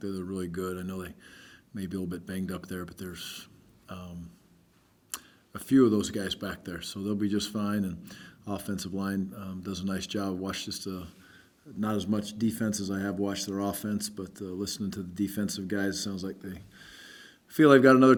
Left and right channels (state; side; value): identical; both; correlation 1.00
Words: that are really good. I know they may be a little bit banged up there, but there's a few of those guys back there, so they'll be just fine. And offensive line does a nice job. Watched just not as much defense as I have watched their offense, but listening to the defensive guys, it sounds like they feel they've got another